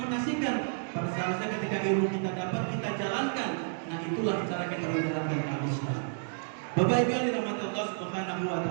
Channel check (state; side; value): silent; left; digital silence